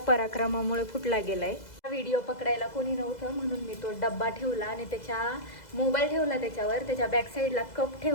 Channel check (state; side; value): late; right; 2.0 ms